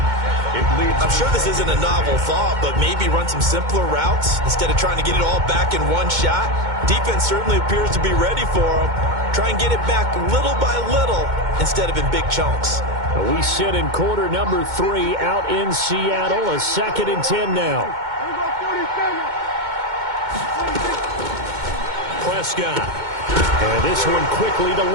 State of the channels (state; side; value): late; left; 2.2 ms